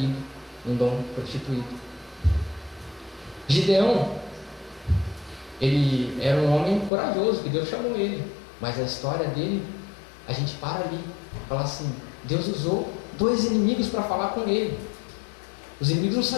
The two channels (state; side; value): drops out; right; at 6.9 s